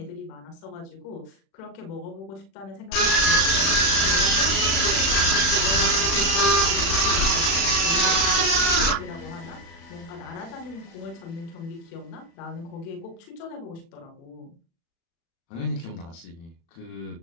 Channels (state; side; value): late; right; 36 ms